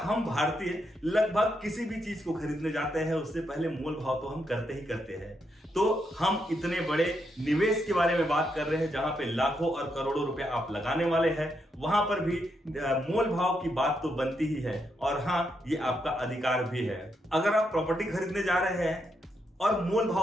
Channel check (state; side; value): normal; both; correlation 0.80